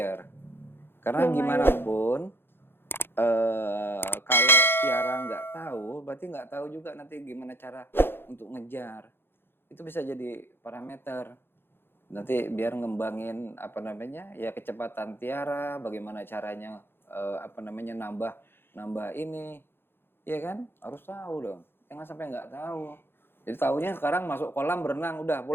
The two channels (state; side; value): late; right; 0.11 ms